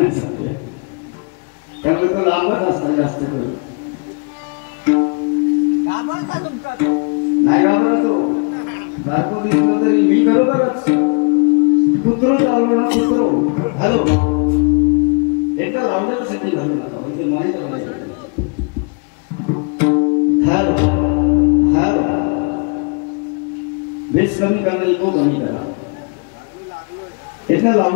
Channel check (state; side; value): quieter; right; 37.0 dB